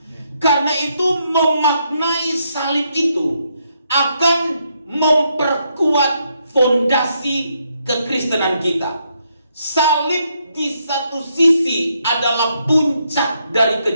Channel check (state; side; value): inverted; both; correlation -0.77